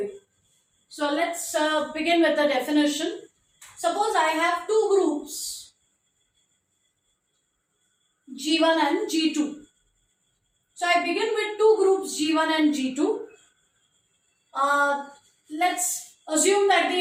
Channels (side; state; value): both; identical; correlation 1.00